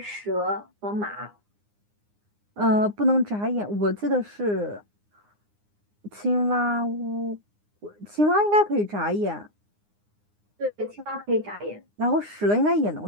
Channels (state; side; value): late; left; 9.7 ms